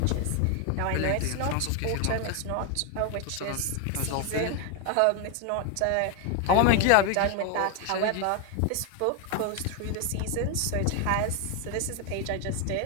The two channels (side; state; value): both; different; correlation 0.01